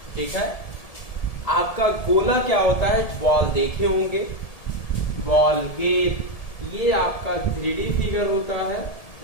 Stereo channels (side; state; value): right; late; 1.7 ms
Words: ठीक है, आपका गोला क्या होता है? बॉल देखे होंगे, बॉल गेंद, ये आपका 3D फिगर होता है।